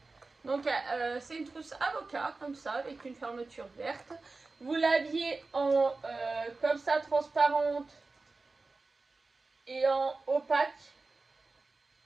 Donc c'est une trousse avocat, comme ça, avec une fermeture verte. Vous l'aviez en comme ça, transparente et en opaque.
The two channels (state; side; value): quieter; left; 3.7 dB